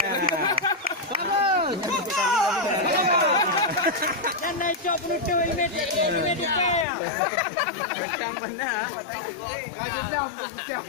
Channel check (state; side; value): drops out; right; at 6.9 s